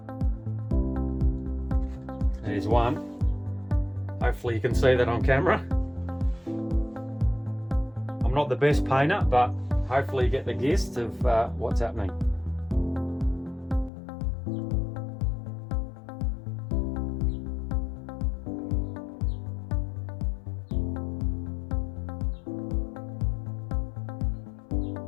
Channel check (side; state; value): right; drops out; at 13.9 s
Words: There's one. Hopefully you can see that on camera. I'm not the best painter, but hopefully you get the gist of what's happening.